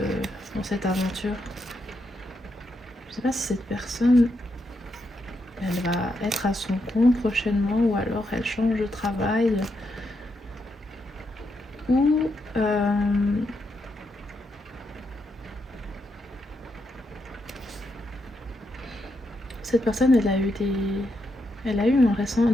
dans cette aventure. Je ne sais pas si cette personne, elle va être à son compte prochainement, ou alors elle change de travail, ou cette personne, elle a eu un récent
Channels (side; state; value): both; normal; correlation 0.81